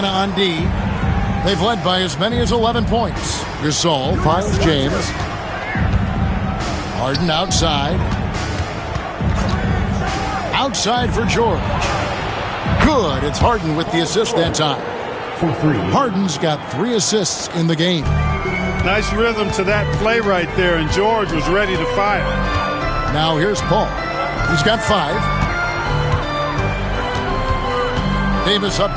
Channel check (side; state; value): both; identical; correlation 1.00